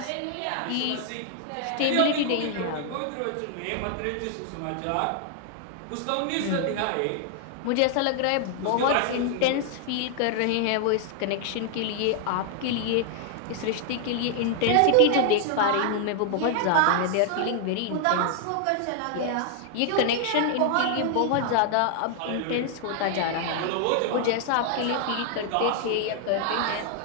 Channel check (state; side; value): different; both; correlation 0.00